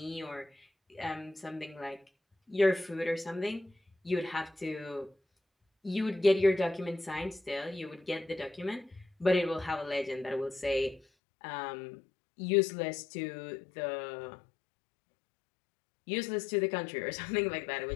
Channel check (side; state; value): right; drops out; at 11.0 s